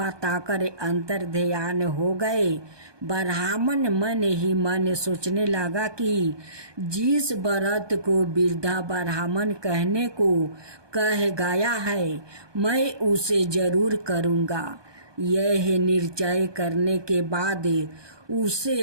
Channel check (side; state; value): left; late; 1.2 ms